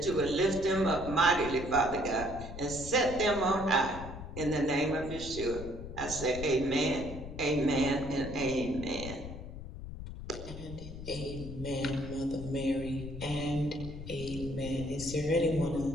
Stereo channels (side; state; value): left; noise; rumble, 10 dB below the sound